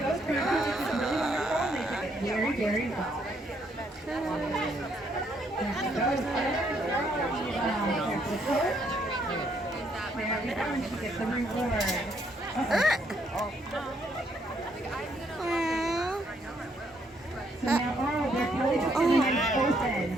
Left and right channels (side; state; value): both; normal; correlation 0.71